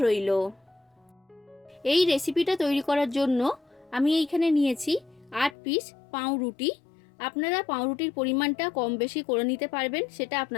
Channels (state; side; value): drops out; right; at 5.6 s